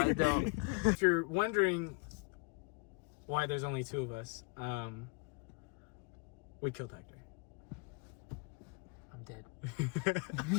don't. If you're wondering why there's only two of us, we killed Hector. I'm dead.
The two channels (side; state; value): right; quieter; 32.9 dB